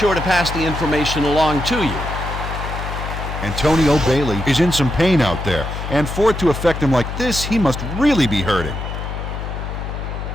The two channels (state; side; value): noise; left; hum, 6 dB below the sound